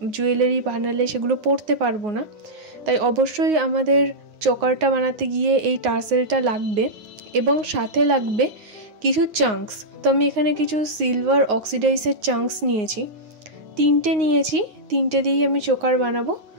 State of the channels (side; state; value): left; late; 9.5 ms